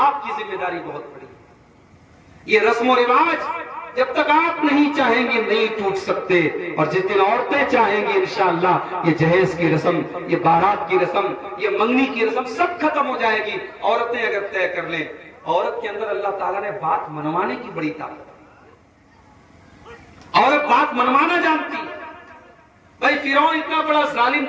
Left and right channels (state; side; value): identical; both; correlation 1.00